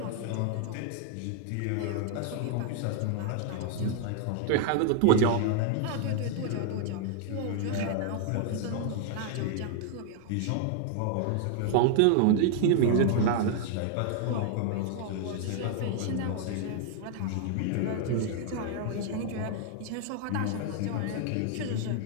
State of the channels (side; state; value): both; different; correlation 0.00